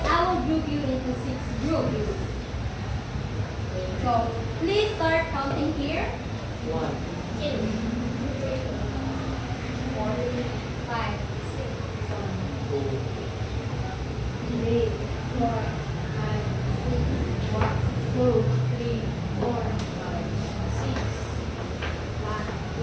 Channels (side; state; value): both; identical; correlation 1.00